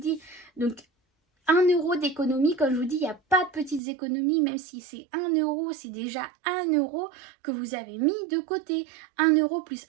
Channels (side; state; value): left; drops out; at 3.8 s